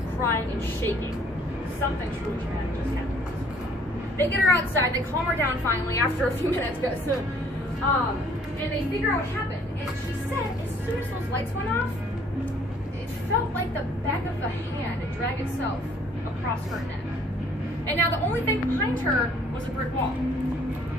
crying, and shaking. Something truly traumatic just happened. They get her outside, they calm her down finally after a few minutes, and they figure out what happened. And she said, as soon as those lights went off, it felt like the back of the hand had dragged itself across her neck. And now the only thing behind her was a brick wall.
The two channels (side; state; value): both; normal; correlation 0.60